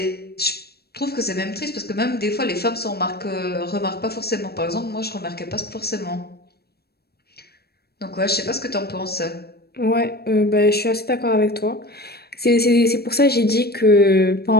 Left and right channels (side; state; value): right; late; 0.46 ms